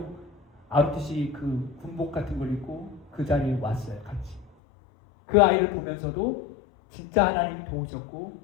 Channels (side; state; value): right; drops out; at 4.5 s